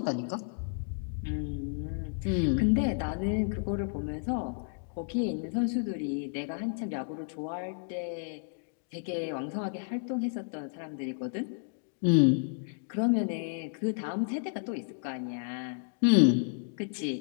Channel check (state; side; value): silent; right; digital silence